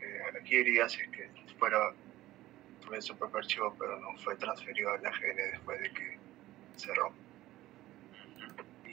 aquí iría si es que tuviese su propio archivo, pero no fue transferido al AGN después de que cerró.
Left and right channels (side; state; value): left; quieter; 16.0 dB